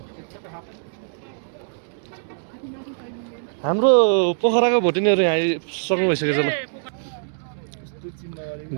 हाम्रो पोखराको भोटिनीहरू यहाँ आइसक्नु भइसकेछ ल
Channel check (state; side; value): silent; left; digital silence